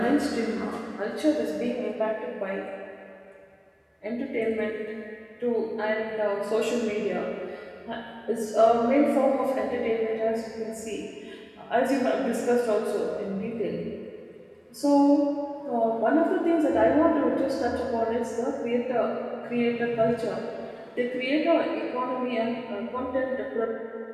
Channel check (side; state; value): both; identical; correlation 1.00